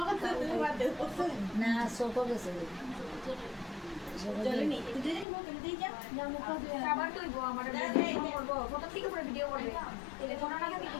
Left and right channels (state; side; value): drops out; right; at 5.2 s